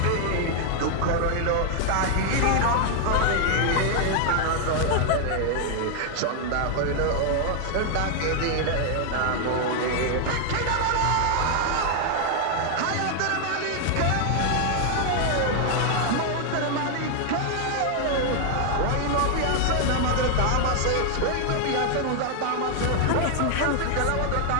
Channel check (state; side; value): different; both; correlation 0.00